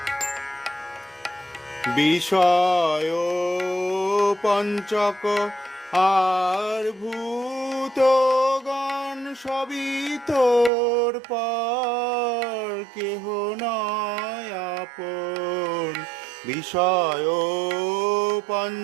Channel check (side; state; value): left; drops out; at 10.7 s